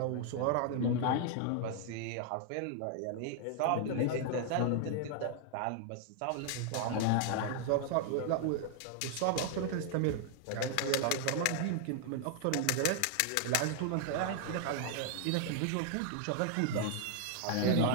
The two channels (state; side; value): different; both; correlation 0.00